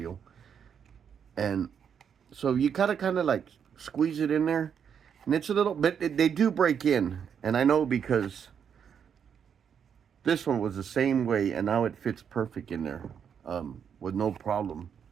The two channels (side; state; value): left; quieter; 7.6 dB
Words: And so you kind of like squeeze it in there. And it's a little bit, they do break in. And I know because this one was the same way and now it fits perfect in there with no problem.